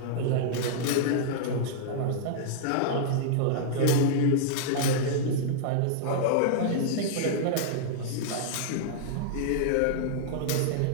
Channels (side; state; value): both; different; correlation -0.02